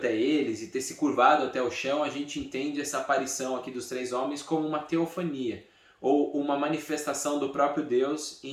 eles e ter se curvado até o chão, a gente entende essa aparição aqui dos 3 homens como uma teofania, ou uma manifestação do próprio Deus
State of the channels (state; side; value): identical; both; correlation 1.00